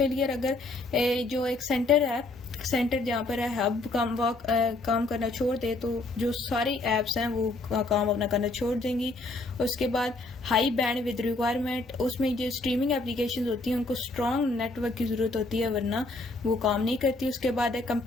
अगर जो एक सेंटर है, सेंटर जहाँ पर है हब काम करना छोड़ दे तो जो सारी एप्स हैं वो काम अपना करना छोड़ देंगी। उसके बाद हाई बैंड विद रिक्वायरमेंट, उसमें जो स्ट्रीमिंग एप्लीकेशंस होती हैं उनको स्ट्रॉन्ग नेटवर्क की ज़रूरत होती है वरना वो काम नहीं करती। उसके बाद है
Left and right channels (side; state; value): right; quieter; 3.1 dB